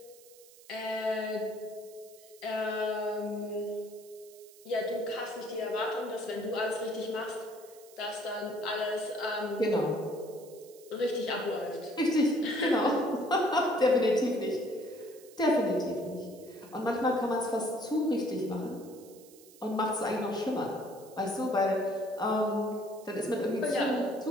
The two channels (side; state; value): right; noise; hiss, 22 dB below the sound